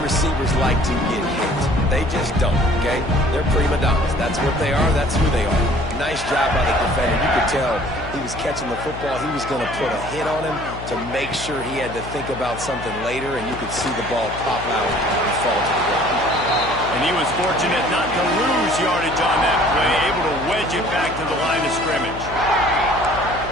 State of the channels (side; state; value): left; noise; hum, 12 dB below the sound